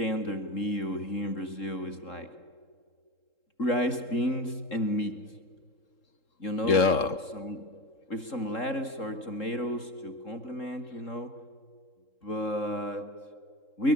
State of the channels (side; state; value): right; late; 3.7 ms